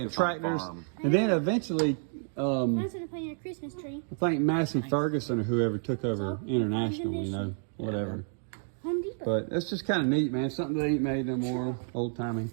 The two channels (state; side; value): silent; left; 58 dB below the other